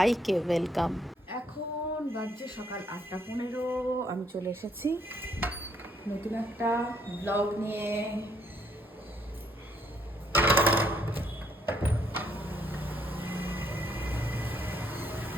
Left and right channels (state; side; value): normal; both; correlation 0.70